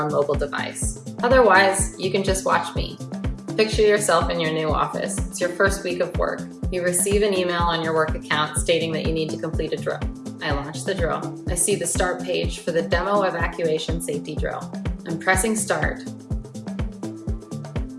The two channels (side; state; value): both; identical; correlation 1.00